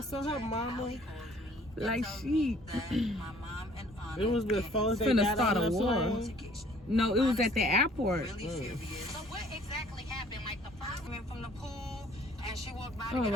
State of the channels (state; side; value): normal; both; correlation 0.57